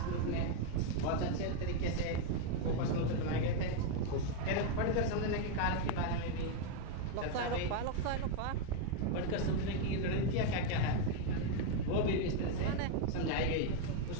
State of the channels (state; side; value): different; both; correlation 0.01